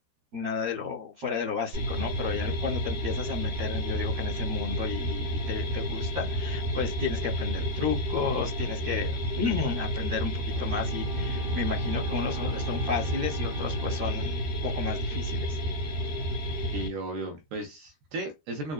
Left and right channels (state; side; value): late; left; 13 ms